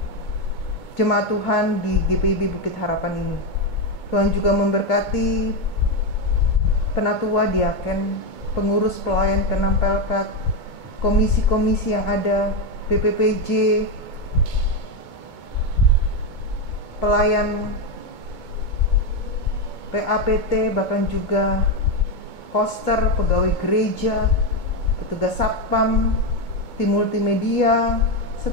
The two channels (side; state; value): right; late; 2.3 ms